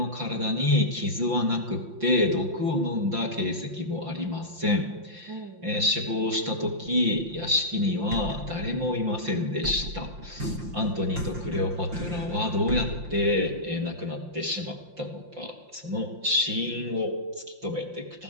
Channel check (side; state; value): left; late; 5.7 ms